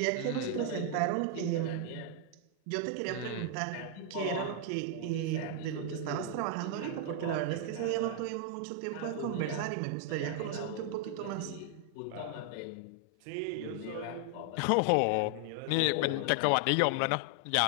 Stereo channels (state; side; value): different; both; correlation 0.00